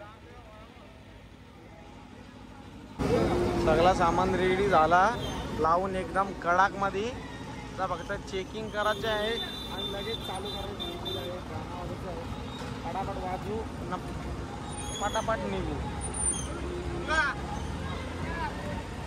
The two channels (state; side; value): identical; both; correlation 1.00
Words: सगळा सामान रेडी झाला लावून एकदम कडक मध्ये फक्त चेकिंग करायचे आहे आणि लगेच चालू करायचं आहे फटाफट वाजू फटाफट निघू